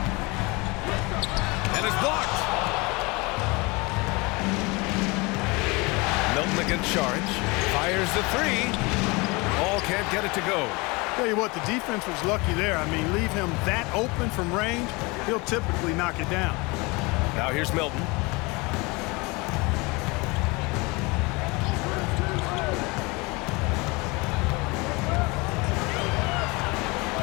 And it's blocked. Milton against Saric. Fires the three. Paul can't get it to go. Tell you what, the defense was lucky there. I mean, leave him that open from range, he'll typically knock it down. Now here's Milton.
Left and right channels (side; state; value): right; quieter; 26.0 dB